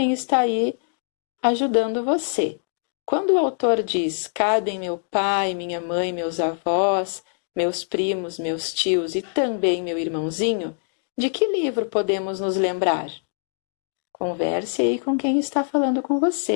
está aí ajudando você. Quando o autor diz, cabem meu pai, minha mãe, meus avós, meus primos, meus tios e também meu irmãozinho, De que livro podemos nos lembrar? Converse aí com quem está falando com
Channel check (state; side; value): silent; right; 63 dB below the other